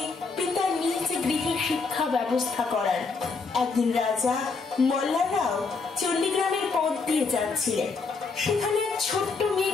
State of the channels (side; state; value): right; quieter; 4.4 dB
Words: পিতা নিজ গৃহে শিক্ষা ব্যবস্থা করান। একদিন রাজা মল্লাররাও চণ্ডীগ্রামের পথ দিয়ে যাচ্ছিলেন। সেখানে এক ছোট্ট